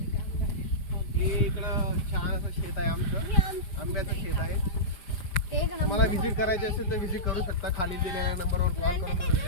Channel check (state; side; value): late; right; 5.0 ms